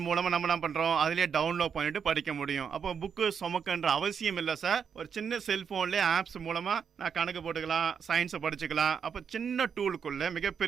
மூலமாக நம்ம என்ன பண்ணுறோம், அதிலே டவுன்லோட் பண்ணிட்டு படிக்க முடியும். அப்போ புக்கு சுமக்குன்ற அவசியம் இல்லை சார். ஒரு சின்ன செல்ஃபோன்லேயே ஆப்ஸ் மூலமாக நான் கணக்கு போட்டுக்கலாம், சயின்ஸை படிச்சுக்கலாம். அப்போ சின்ன டூலுக்குள்ள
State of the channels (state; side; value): quieter; left; 7.0 dB